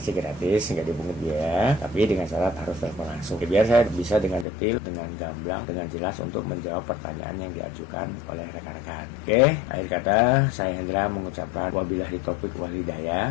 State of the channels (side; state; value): right; drops out; at 4.5 s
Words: gratis, nggak dipungut biaya, tapi dengan syarat harus telepon langsung. Biar saya bisa dengan detail, dengan gamblang, dengan jelas untuk menjawab pertanyaan yang diajukan oleh rekan-rekan. Oke, akhir kata saya Hendra mengucapkan wabillahi taufik wal